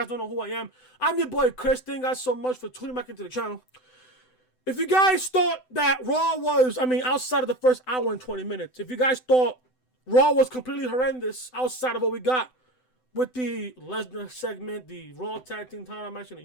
don't know who I am, I'm your boy Chris. Thank you guys so much for tuning back into the channel. If you guys thought that Raw was, outside of the first hour and 20 minutes, if you guys thought Raw was completely horrendous outside of what we got with the Lesnar segment, the Raw Tag Team title match, and the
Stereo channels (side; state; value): right; late; 7.9 ms